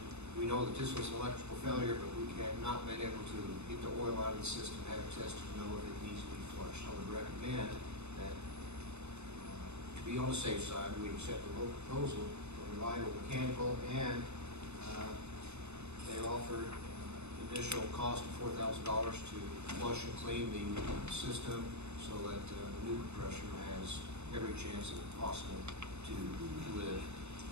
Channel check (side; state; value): left; late; 0.81 ms